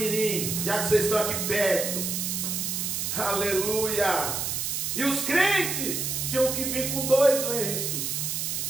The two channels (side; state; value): right; noise; hiss, 1 dB below the sound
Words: já que vocês estão aqui perto. Aleluia! E os crentes tinham que vir com 2 lenços,